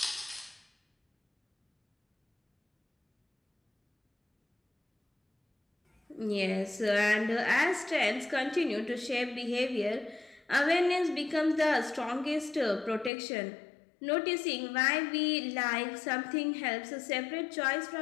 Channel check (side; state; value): right; drops out; at 13.1 s